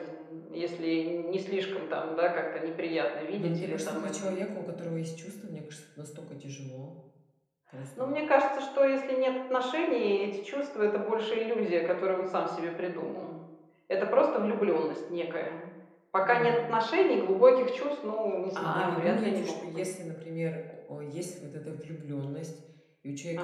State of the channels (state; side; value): identical; both; correlation 1.00